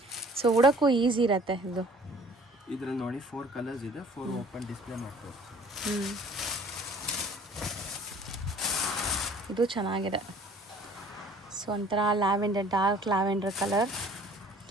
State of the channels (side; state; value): both; normal; correlation 0.52